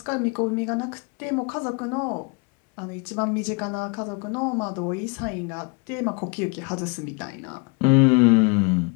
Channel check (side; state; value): right; quieter; 31.4 dB